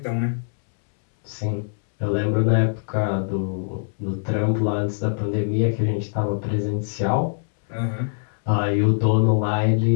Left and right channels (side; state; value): right; silent; 64 dB below the other